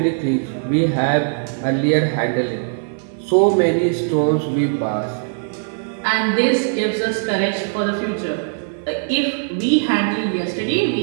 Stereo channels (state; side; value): silent; left; 59 dB below the other